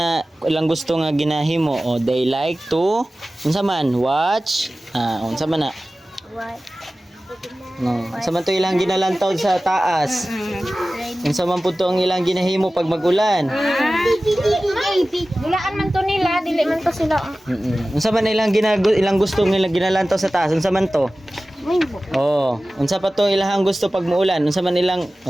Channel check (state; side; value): normal; both; correlation 0.96